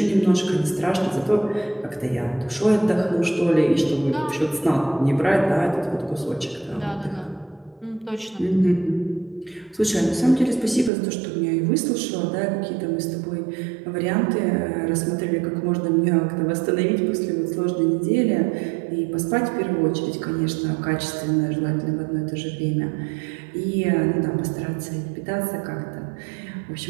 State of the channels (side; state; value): left; drops out; at 10.9 s